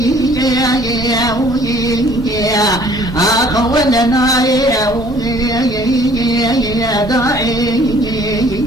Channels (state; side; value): normal; both; correlation 0.56